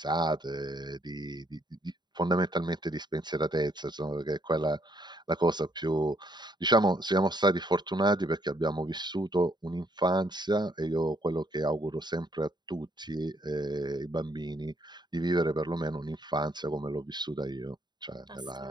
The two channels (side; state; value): left; late; 0.21 ms